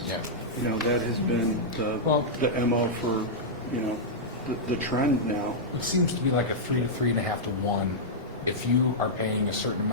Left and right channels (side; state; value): both; normal; correlation -0.09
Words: Yeah. You know, that has been Well- the MO for, you know, the trend now. It seems to be like a 3 to 3.5 to 1. If you are paying a certain